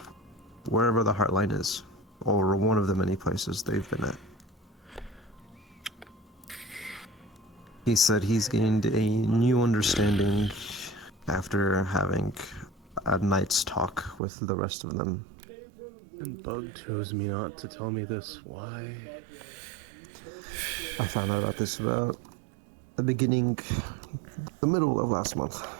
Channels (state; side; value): drops out; left; at 14.2 s